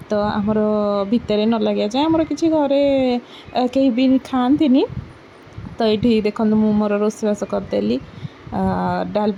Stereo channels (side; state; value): both; identical; correlation 1.00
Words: तो आमर भितर न लगे जाए आमर किसी घरे कहीं भी खाती तो ये देखो मु मोर रोषेबास करदेली